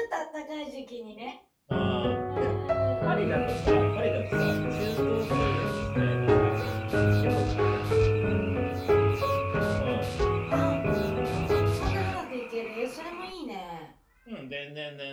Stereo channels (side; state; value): both; identical; correlation 1.00